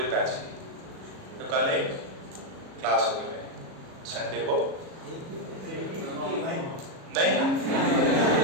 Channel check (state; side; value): late; left; 37 ms